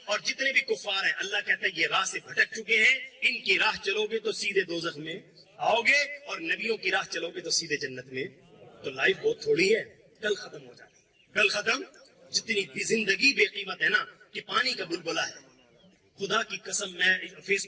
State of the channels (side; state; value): both; identical; correlation 1.00